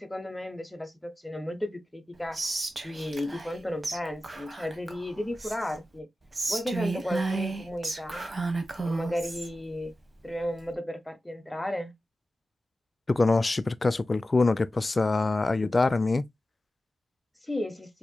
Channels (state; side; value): normal; both; correlation 0.94